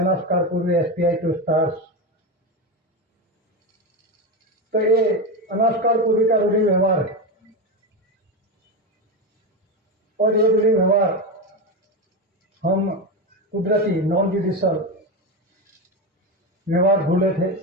पूर्वी एसपीआई टू स्टार्स। तो ये अनास्कार पूर्वी का रूढ़ी व्यवहार है और ये रूढ़ी व्यवहार हम कुदरती नॉन जुडिशियल व्यवहार भूले थे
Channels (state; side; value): normal; both; correlation 0.16